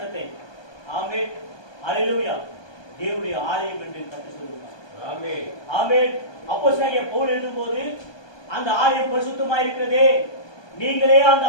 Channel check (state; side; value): late; right; 1.2 ms